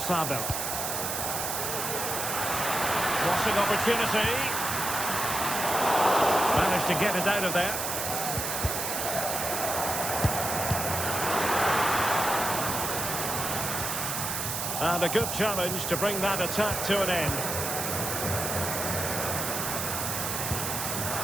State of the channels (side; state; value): right; noise; hiss, 2 dB below the sound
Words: Crossing opportunity. Managed to get it out of there. And a good challenge to bring that attack to an end.